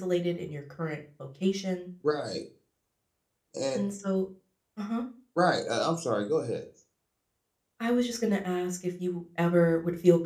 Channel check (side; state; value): both; identical; correlation 1.00